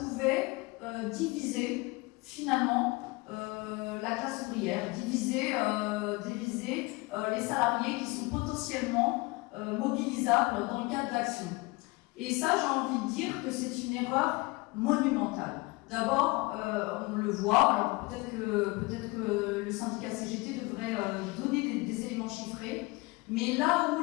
diviser finalement la classe ouvrière, diviser les salariés qui sont potentiellement mobilisables dans le cadre d'action. Et ça, j'ai envie de dire que c'est une erreur monumentale. D'abord, on le voit, alors peut-être que le syndicat CGT devrait donner des éléments chiffrés, mais là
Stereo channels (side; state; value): right; quieter; 24.1 dB